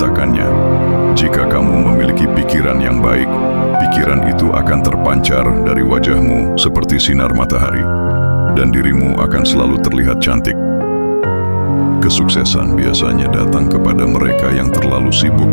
Jika kamu memiliki pikiran yang baik, pikiran itu akan terpancar dari wajahmu seperti sinar matahari, dan dirimu akan selalu terlihat cantik. Kesuksesan biasanya datang kepada mereka yang terlalu sibuk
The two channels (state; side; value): inverted; both; correlation -1.00